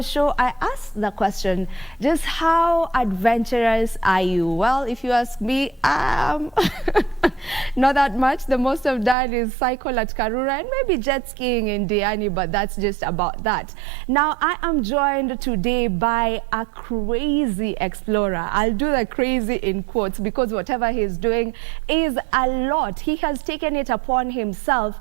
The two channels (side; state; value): left; drops out; at 9.2 s